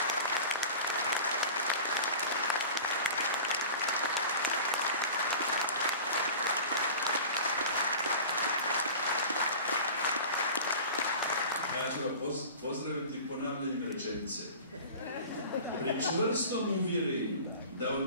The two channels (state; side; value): inverted; both; correlation -0.38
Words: Ja ću vas pozdraviti ponavljanjem rečenice. Pri čvrstom uvjerenju da